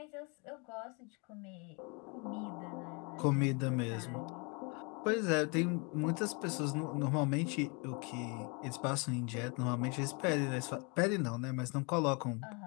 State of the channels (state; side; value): quieter; right; 32.5 dB